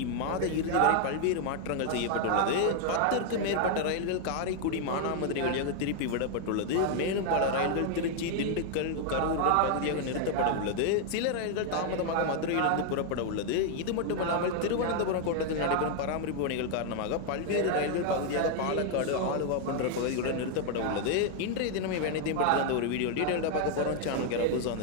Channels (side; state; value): both; different; correlation 0.00